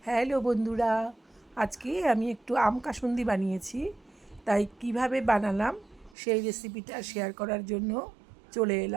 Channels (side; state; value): left; drops out; at 6.2 s